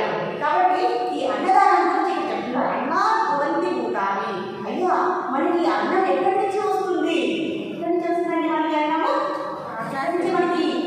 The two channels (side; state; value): both; identical; correlation 1.00